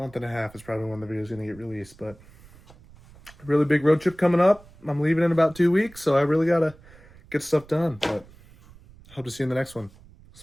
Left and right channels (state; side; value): noise; right; rumble, 24 dB below the sound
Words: and a half is probably when the video is going to get released. But a really big road trip coming up. I'm leaving in about 2 weeks, so I really got to get stuff done. But I hope to see you in the next one.